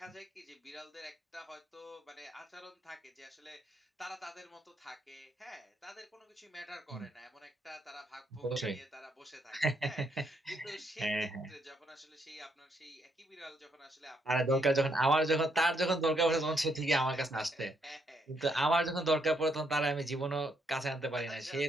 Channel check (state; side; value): normal; both; correlation 0.75